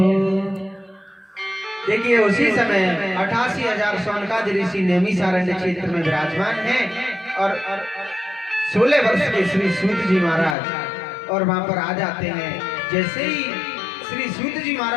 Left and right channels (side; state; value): right; drops out; at 10.6 s